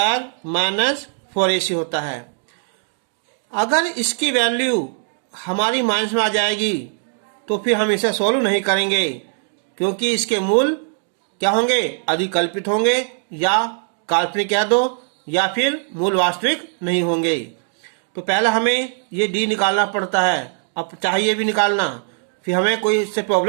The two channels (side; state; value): left; silent; digital silence